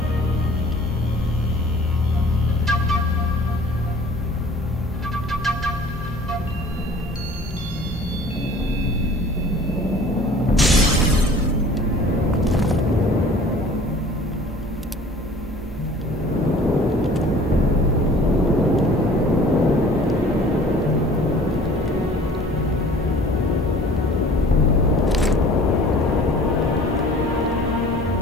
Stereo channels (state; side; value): normal; both; correlation 0.49